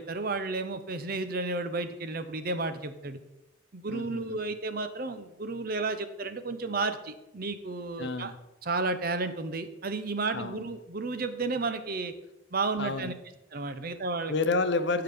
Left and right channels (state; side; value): normal; both; correlation -0.01